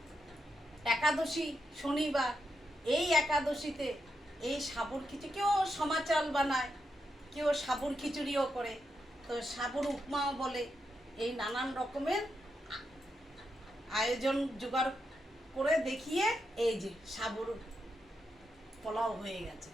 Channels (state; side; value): normal; both; correlation 0.84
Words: একাদশী শনিবার, এই একাদশীতে এই সাবুর খিচুড়ি, কেউ সমা চাল বানায়, কেউ সাবুর খিচুড়িও করে, তো সাবুর উপমাও বলে। এই নানান রকমের আয়োজন জোগাড় করে দেখিয়ে এই যে সাবুর পোলাও হয়ে গেছে।